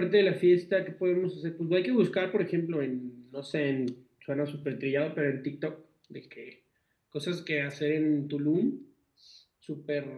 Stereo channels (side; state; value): both; identical; correlation 1.00